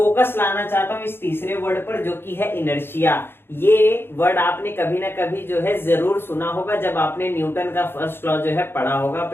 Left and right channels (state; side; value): late; right; 0.11 ms